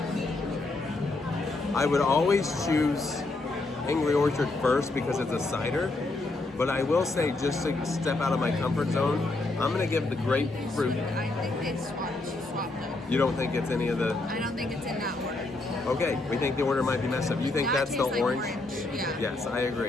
I would always choose Angry Orchard first because it's a cider. But I will say, just to step out of my comfort zone, I'm gonna give the grapefruit. I think they swapped though. You don't think it's any of the? I don't think it's in that order. Okay, we think the order might be messed up. You think That that's the tastes like orange? Yeah. Yes, I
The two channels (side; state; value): right; quieter; 3.1 dB